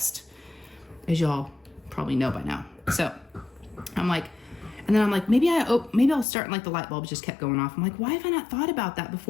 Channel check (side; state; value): right; drops out; at 6.2 s